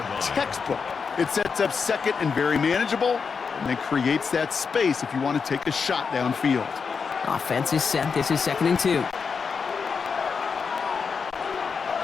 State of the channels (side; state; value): right; quieter; 5.6 dB